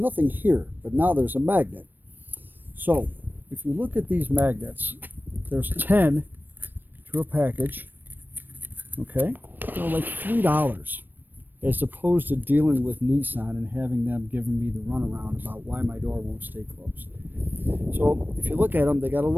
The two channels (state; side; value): late; left; 0.092 ms